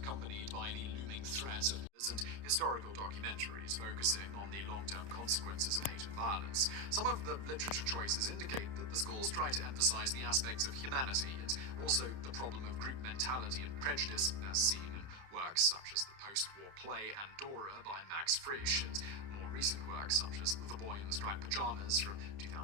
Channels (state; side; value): late; left; 30 ms